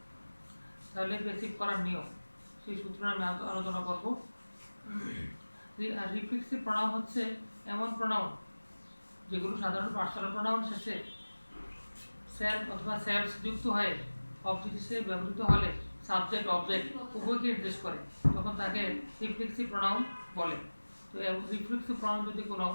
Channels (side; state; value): both; inverted; correlation -1.00